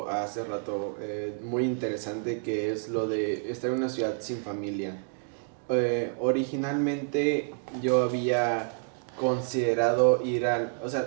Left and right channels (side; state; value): left; silent; 59 dB below the other